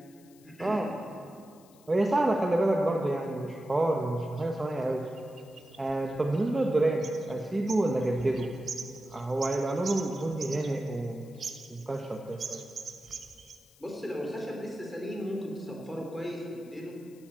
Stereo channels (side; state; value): left; noise; hiss, 28 dB below the sound